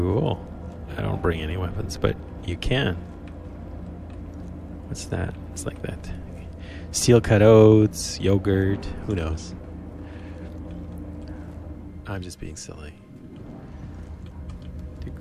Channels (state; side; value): identical; both; correlation 1.00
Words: I don't bring any weapons, but you can. What's that? It's like that. Steel cut oats, yogurt, who knows? I'm just being silly.